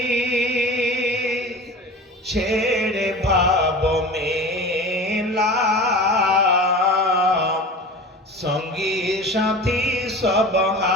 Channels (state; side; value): normal; both; correlation 0.35